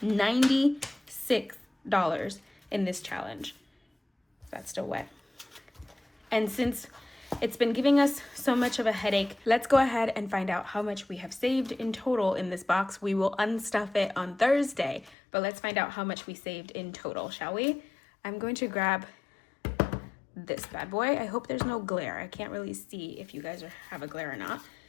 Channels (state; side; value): drops out; right; at 15.2 s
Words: $96 in this challenge. That's still wet. And since it's been giving us so much of a headache, let's go ahead and find out how much we have saved in total in this box. We will unstuff it on Thursday, but let's find out how much we saved in total, shall we? I'm going to grab this bad boy. I hope there's no glare. I can't really see if you guys have a glare or not.